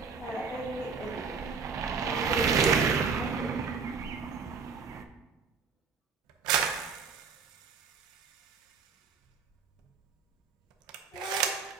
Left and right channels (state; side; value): quieter; left; 5.4 dB